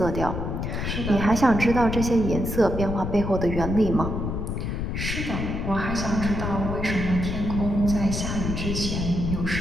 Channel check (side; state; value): left; noise; rumble, 3 dB below the sound